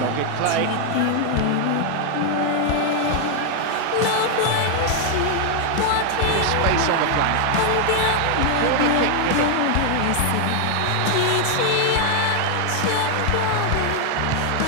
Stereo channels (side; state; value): both; different; correlation 0.00